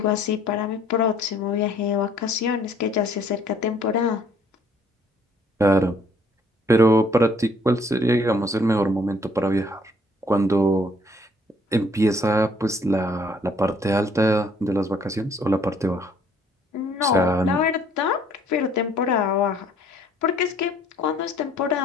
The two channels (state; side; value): normal; both; correlation 0.61